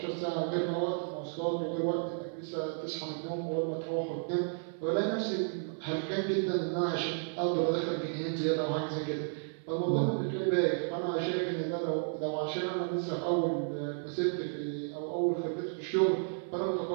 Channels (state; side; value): silent; left; 56 dB below the other